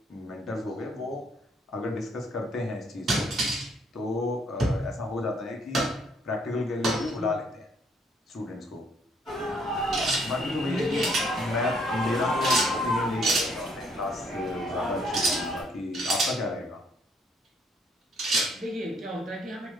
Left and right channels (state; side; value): normal; both; correlation 0.67